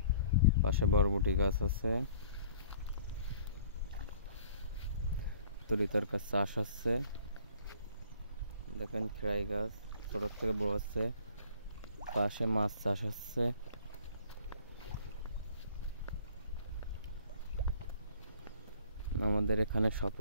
পাশে বরবটি গাছ আছে, তরি তরকার চাষ হচ্ছে। দেখেন খেরাই গাছ ছোট থেকে বড় হচ্ছে। পাশে মাছ চাষ হচ্ছে। আমাদের এখানে সব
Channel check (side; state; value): both; inverted; correlation -0.53